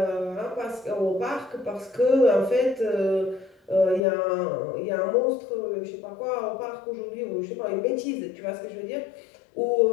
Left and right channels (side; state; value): right; drops out; at 4.0 s